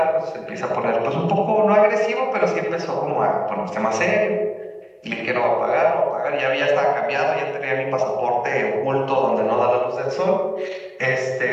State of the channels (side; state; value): both; identical; correlation 1.00